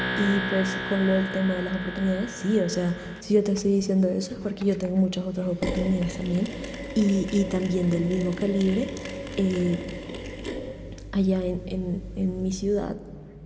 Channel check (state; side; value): identical; both; correlation 1.00